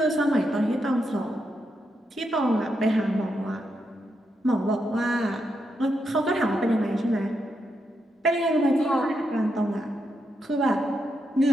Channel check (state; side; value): normal; both; correlation 0.82